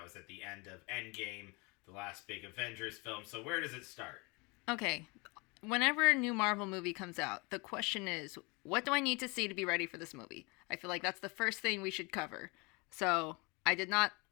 was at the end of Endgame, the last big Avengers film. So where does it start? Okay. Whenever a new Marvel movie comes out, the question is, what do I need to see to be ready for this movie? I feel like that's the first thing we should cover. So I did not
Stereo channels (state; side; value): quieter; right; 28.1 dB